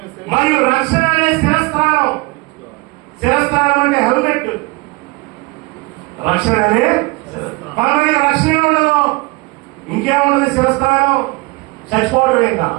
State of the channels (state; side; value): quieter; left; 24.6 dB